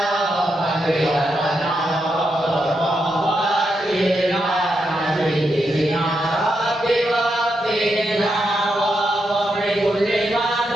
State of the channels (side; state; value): both; normal; correlation 0.83